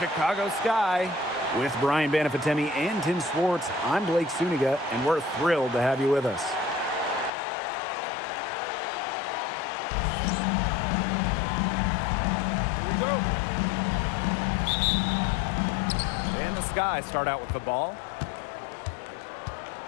sky. With Brian Banafitemi and Tim Swartz, I'm Blake Suniga, and we're thrilled to have you with us. Here we go. And the Sky start out with the ball.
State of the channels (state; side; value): drops out; right; at 7.3 s